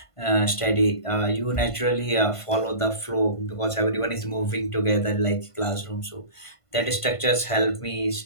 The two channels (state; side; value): late; right; 1.5 ms